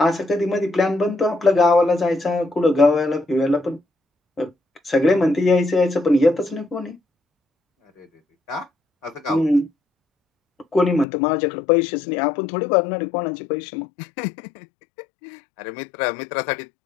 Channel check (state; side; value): drops out; right; at 11.1 s